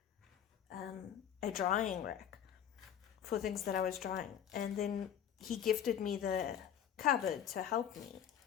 a drying rack for things that I was drying, and then he gifted me the cupboard to help me,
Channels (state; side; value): quieter; right; 9.5 dB